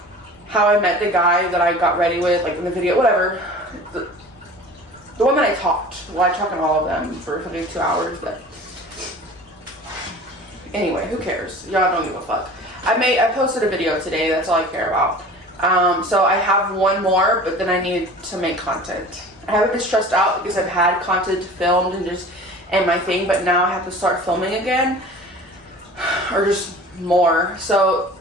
how I met the guy that I got ready with, like in the video, whatever. The one that I talked. Well, I talked on all of them for something 2 hours, but anyway, who cares? Y'all don't give a fuck. I posted a video today. That's all I care about. So I have one more, but then I need to make content. I haven't been stressed out because I've had content filmed and my thing, but now I have to start filming again, or just more. So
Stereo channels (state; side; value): normal; both; correlation 0.41